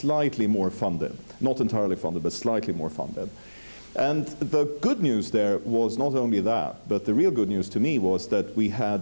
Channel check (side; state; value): both; inverted; correlation -1.00